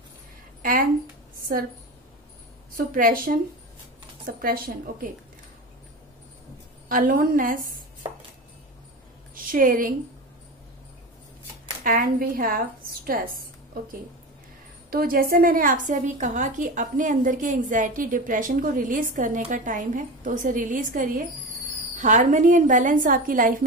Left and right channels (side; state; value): both; normal; correlation 0.26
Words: and suppression, okay, aloneness, sharing, and we have stress. okay, तो जैसे मैंने आपसे अभी कहा कि अपने अंदर के एंजाइटी, डिप्रेशन को रिलीज करने का टाइम है, तो उसे रिलीज करिए। हार्मनी एंड बैलेंस आपकी लाइफ